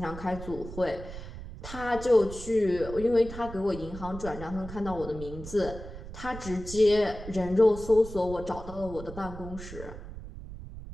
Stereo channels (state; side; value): noise; right; rumble, 12 dB below the sound